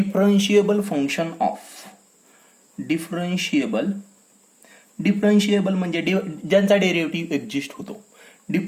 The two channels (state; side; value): identical; both; correlation 1.00